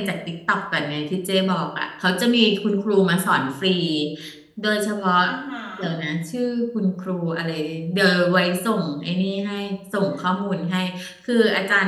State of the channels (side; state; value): both; identical; correlation 1.00